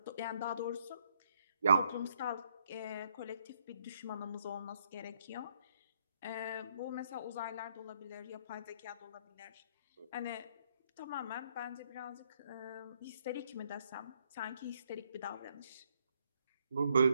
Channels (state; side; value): inverted; both; correlation -0.73